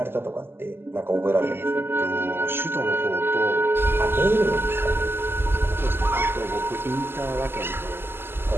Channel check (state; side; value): late; left; 0.11 ms